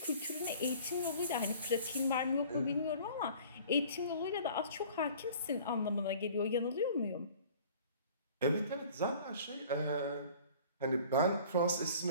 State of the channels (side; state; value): both; inverted; correlation -0.48